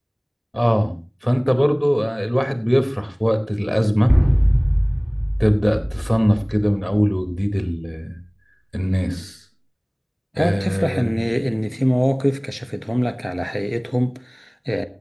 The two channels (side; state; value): both; identical; correlation 1.00